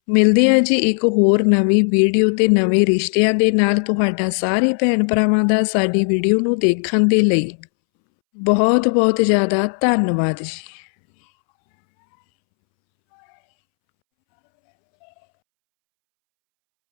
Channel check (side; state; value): right; silent; 69 dB below the other